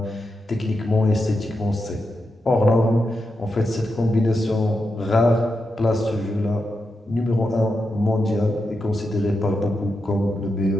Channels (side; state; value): both; normal; correlation 0.87